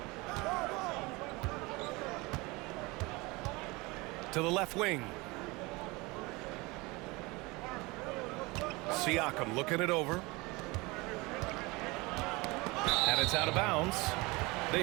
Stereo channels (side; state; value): left; quieter; 24.2 dB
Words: To the left wing. Siakam looking it over. And it's out of bounds. They